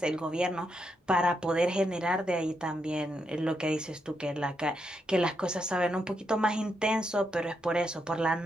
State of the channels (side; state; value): both; normal; correlation 0.81